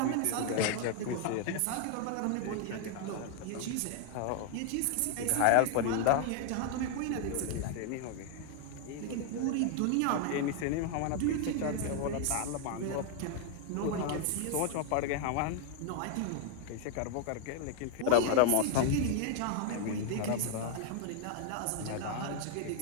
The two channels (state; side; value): different; both; correlation 0.00